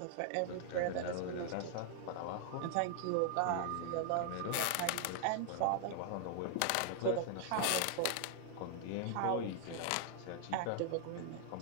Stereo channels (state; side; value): different; both; correlation 0.00